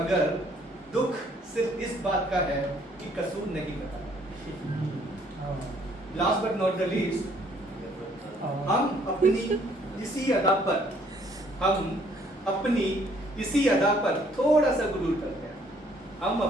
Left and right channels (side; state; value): both; normal; correlation 0.63